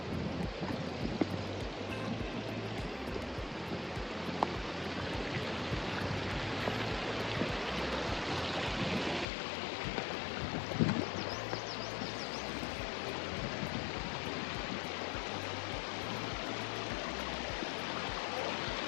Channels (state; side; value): drops out; right; at 9.2 s